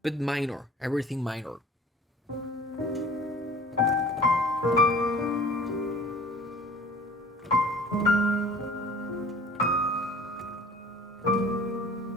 but minor, everything minor.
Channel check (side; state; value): both; normal; correlation 0.47